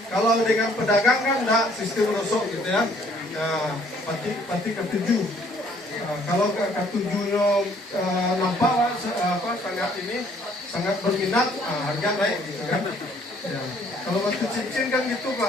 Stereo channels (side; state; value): both; normal; correlation 0.61